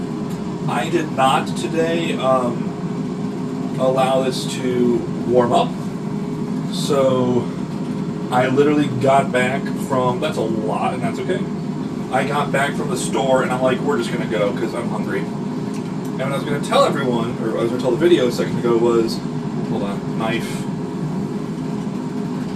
I did not today allow this to warm up. So I literally got back from, that's a lot, and that's okay. I got back from the store, and I'm like, we're just going to go, because I'm hungry. And what I was going to tell everyone, or I was going to tell the video a second ago was, hold on, knife.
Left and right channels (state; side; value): identical; both; correlation 1.00